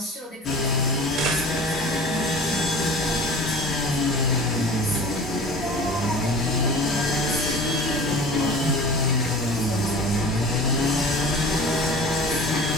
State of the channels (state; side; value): normal; both; correlation 0.40